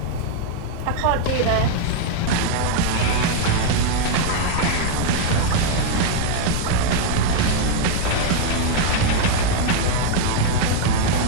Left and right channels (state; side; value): different; both; correlation 0.00